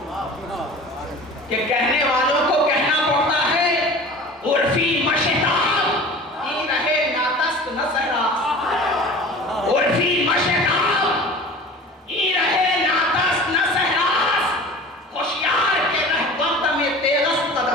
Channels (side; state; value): both; normal; correlation 0.39